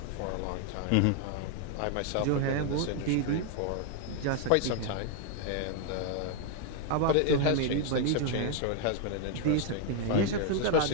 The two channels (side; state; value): both; different; correlation 0.00